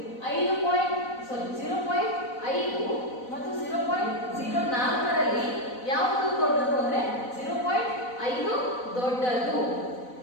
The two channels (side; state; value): right; late; 4.0 ms